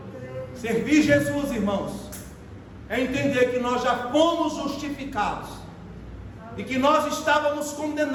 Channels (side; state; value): both; identical; correlation 1.00